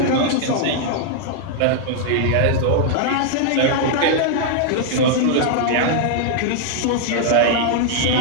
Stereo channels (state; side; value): different; both; correlation -0.01